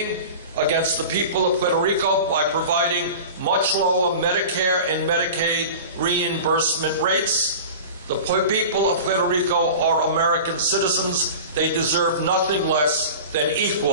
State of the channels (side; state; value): both; inverted; correlation -0.35